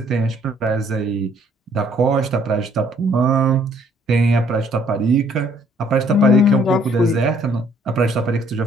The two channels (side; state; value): both; normal; correlation 0.63